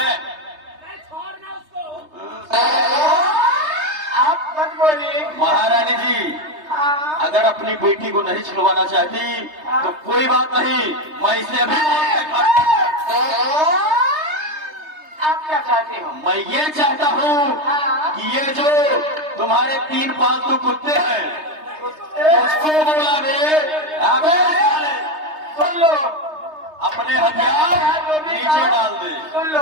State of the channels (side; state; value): left; late; 3.3 ms